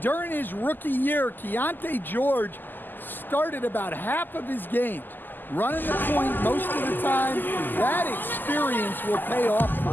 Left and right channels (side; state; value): right; late; 0.089 ms